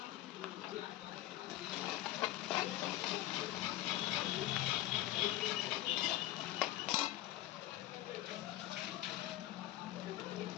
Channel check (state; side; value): quieter; right; 15.0 dB